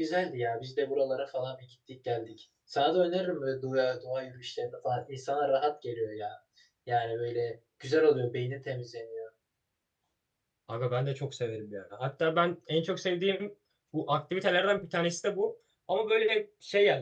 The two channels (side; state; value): both; identical; correlation 1.00